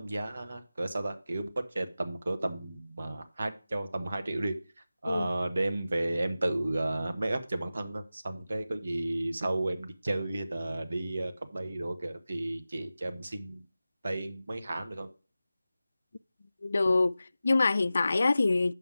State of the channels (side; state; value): both; inverted; correlation -0.94